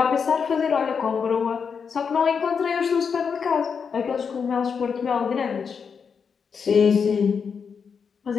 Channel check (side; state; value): right; quieter; 6.2 dB